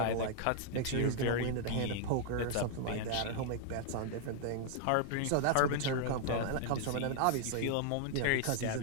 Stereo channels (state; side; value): different; both; correlation -0.01